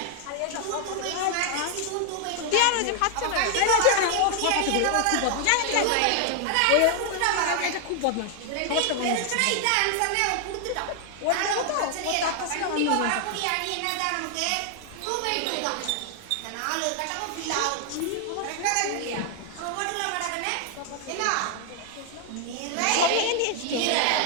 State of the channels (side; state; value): both; different; correlation 0.00